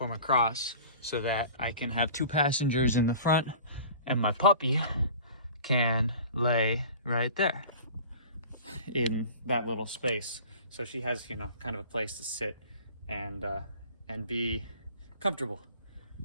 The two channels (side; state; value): both; inverted; correlation -0.43